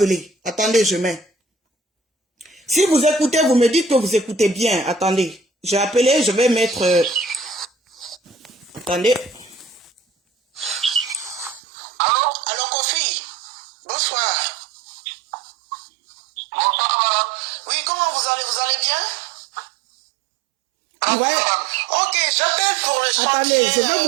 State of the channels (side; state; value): left; drops out; at 11.6 s